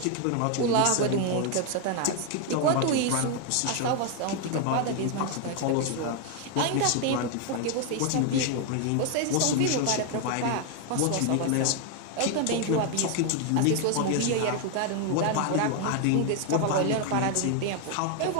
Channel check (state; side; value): different; both; correlation 0.01